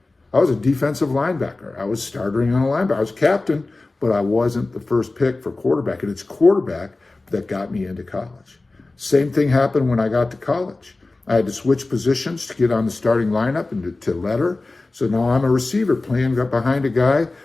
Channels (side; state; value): right; quieter; 3.2 dB